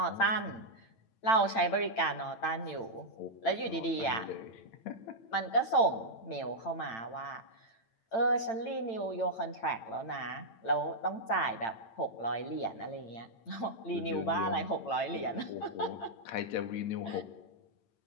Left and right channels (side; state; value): right; late; 8.9 ms